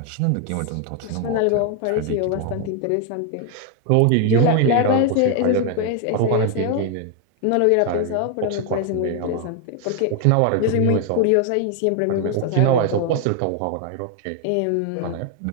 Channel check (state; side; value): different; both; correlation 0.01